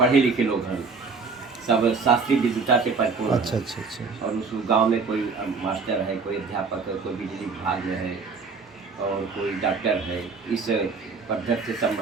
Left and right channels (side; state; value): left; quieter; 4.8 dB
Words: लिखे लोग हैं, सब शास्त्रीय विद्वता से परिपूर्ण अच्छा हैं। अच्छा अच्छा। और उस गांव में कोई मास्टर है, कोई अध्यापक है, कोई बिजली विभाग में है और कोई डॉक्टर है। इस पद्धति से सब